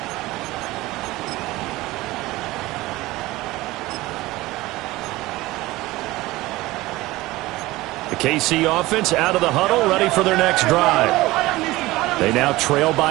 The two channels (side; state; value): left; quieter; 18.9 dB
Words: KC offense out of the huddle, ready for their next drive. They now trail